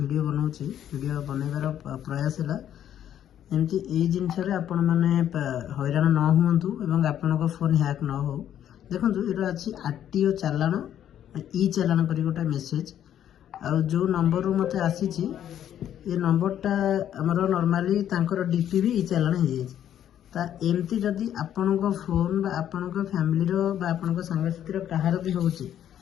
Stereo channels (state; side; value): quieter; right; 10.5 dB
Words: बनाऊँच वीडियो बनइबार प्रयास है एमती यही जिनस आपण मैंने हैरान न हूँ एवं आपण फोन हैक न हो। देखो ये अच्छी आरटीओ चालाण ई चालाण कर गोटे मेसेज और जो नंबर मत आसी ये नंबरटा आमर नॉर्मली तांकर डीपी भी ई चालाण हो जाए एमती जदि आपण फोन बा आपण फैमिली बा आपण सांगसाथी कहार भी